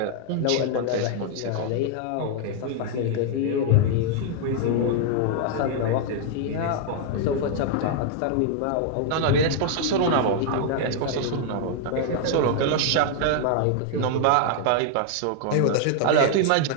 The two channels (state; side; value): different; both; correlation 0.00